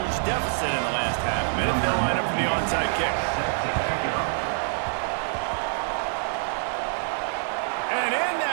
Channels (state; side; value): silent; left; digital silence